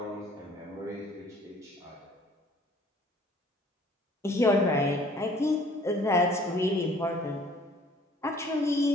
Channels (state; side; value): normal; both; correlation 0.55